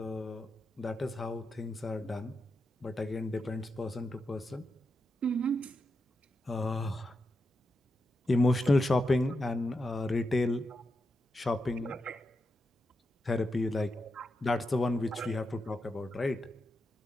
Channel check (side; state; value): both; normal; correlation 0.87